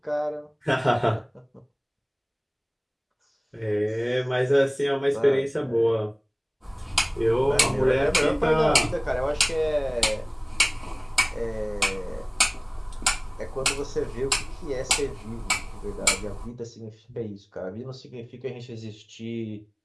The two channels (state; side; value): identical; both; correlation 1.00